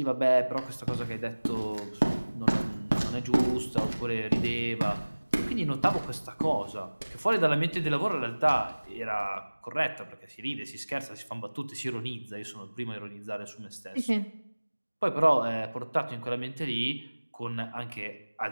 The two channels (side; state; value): both; inverted; correlation -1.00